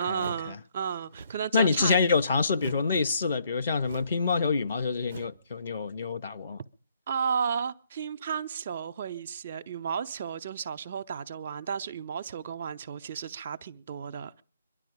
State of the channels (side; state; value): both; inverted; correlation -0.68